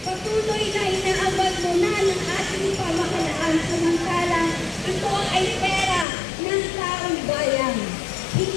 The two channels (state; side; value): drops out; right; at 6.1 s